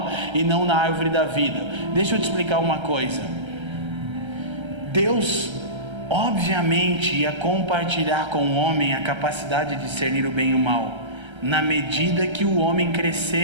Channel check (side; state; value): left; late; 1.3 ms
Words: e não na árvore da vida. Deixa eu te explicar uma coisa. Deus, obviamente, ia compartilhar com o homem a capacidade de discernir o bem e o mal. Na medida que o homem